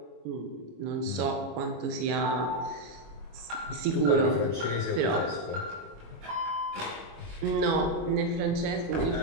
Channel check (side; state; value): left; late; 25 ms